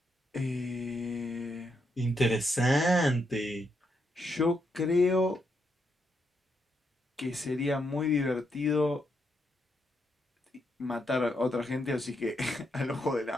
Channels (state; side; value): normal; both; correlation 0.80